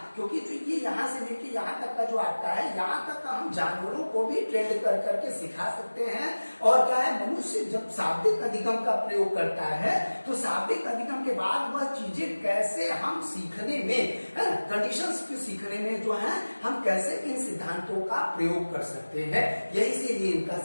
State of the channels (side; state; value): both; inverted; correlation -1.00